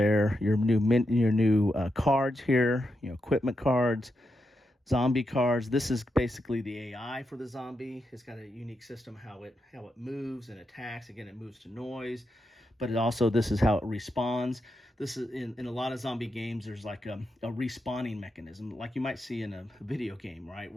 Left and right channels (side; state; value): both; normal; correlation 0.85